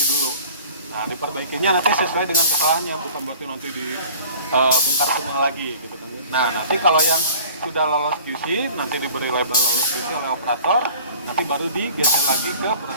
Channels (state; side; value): inverted; both; correlation -0.45